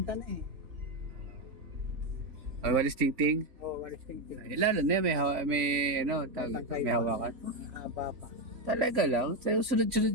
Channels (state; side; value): late; left; 3.6 ms